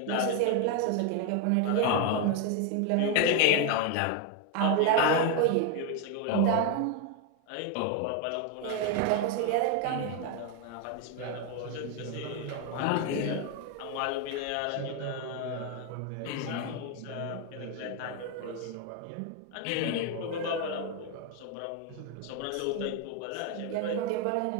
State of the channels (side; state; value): both; different; correlation 0.01